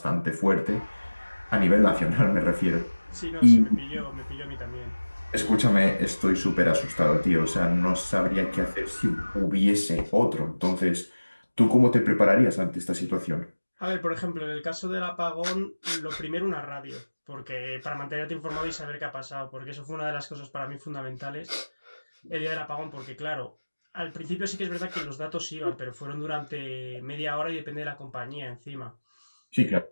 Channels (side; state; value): both; inverted; correlation -1.00